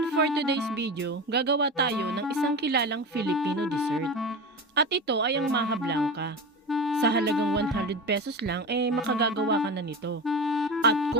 for today's video, gagawa tayo ng isang kilalang Filipino dessert. At ito ay ang Maja Blanca. Sa halagang 100 pesos lang, makagagawa ka na nito. At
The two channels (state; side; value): normal; both; correlation 0.25